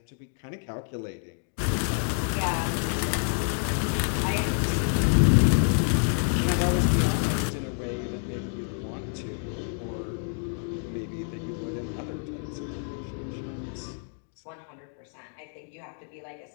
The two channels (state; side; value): silent; right; 57 dB below the other